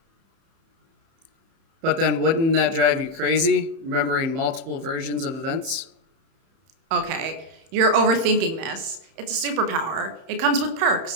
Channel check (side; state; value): left; late; 31 ms